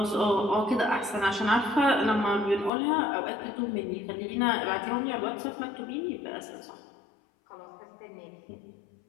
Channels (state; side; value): drops out; right; at 2.7 s